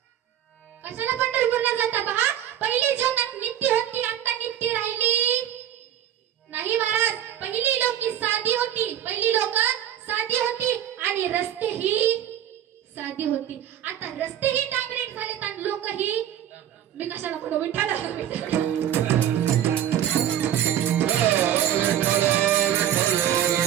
कशाला पंढरपूरला जाता. पहा, पहिली जीवनात नित्य होती, आता नित्य राहिली नाही महाराज. पहिली लोक साधी होती, पहिली लोक साधी होती आणि रस्ते ही साधी होती. आता रस्ते ही डांबरेट झालेत आणि लोक ही, मी कशाला म्हणू, विठ्ठल.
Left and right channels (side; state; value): left; quieter; 10.9 dB